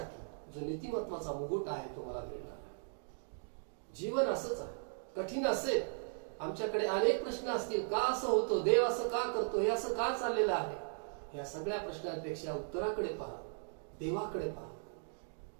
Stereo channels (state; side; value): silent; left; digital silence